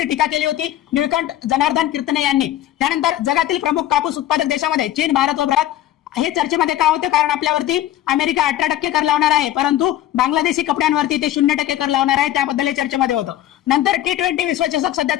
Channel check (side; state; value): right; quieter; 13.0 dB